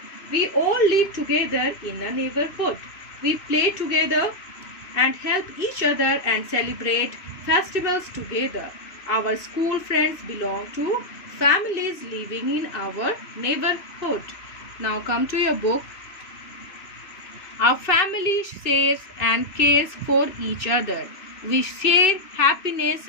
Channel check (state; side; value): late; right; 2.6 ms